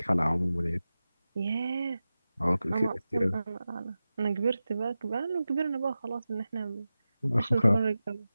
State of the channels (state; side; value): inverted; both; correlation -0.94